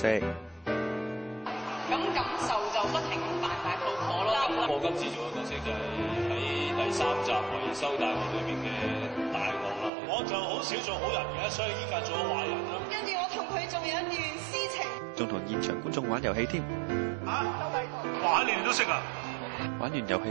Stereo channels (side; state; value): left; drops out; at 9.9 s